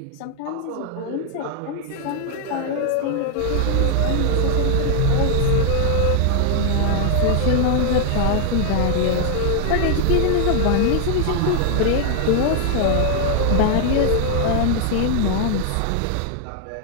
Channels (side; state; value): both; different; correlation 0.00